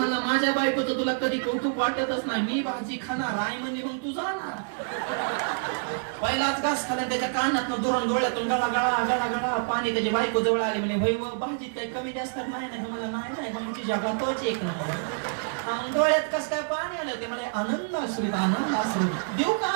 माझ्या बायकोचं तुला कधी कौतुक वाटतच नाही. मी भाजी खाणार आई म्हणजे मग तू जाणार. पहिलाच घास खाला, त्याच्या कानात दुरून डोळ्यातून गळा गळा गळा गळा पाणी. त्याची बायको जवळ आली म्हणे भाई भाजीत काही कमी जास्त नाही ना. मला नाही भाजी जगातच एक नंबर. डोळ्यात कस काय पाणी आलं ते मला आनंद असू आनंद असू. देऊ का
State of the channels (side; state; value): left; silent; digital silence